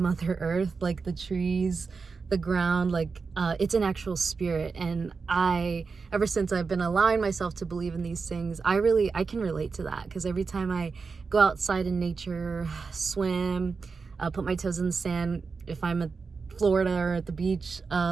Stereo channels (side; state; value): left; quieter; 4.8 dB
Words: Earth, like the trees, the ground, like it's an actual spirit. And ever since I've been allowing myself to believe in these things, I can relate to that, because every time I go outside in nature, swim, put my toes in the sand, if I'm at Florida or at the beach,